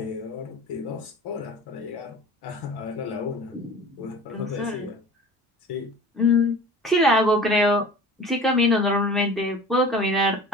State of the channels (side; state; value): both; normal; correlation 0.40